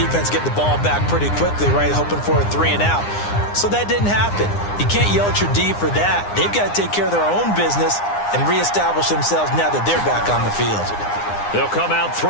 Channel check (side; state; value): right; late; 9.8 ms